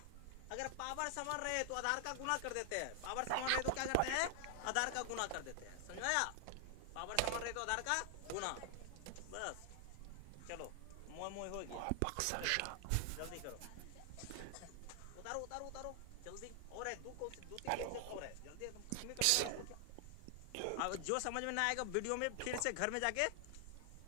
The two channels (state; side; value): different; both; correlation 0.00